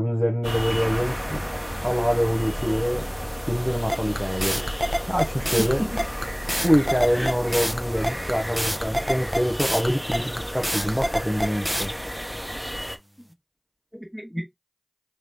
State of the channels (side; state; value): both; identical; correlation 1.00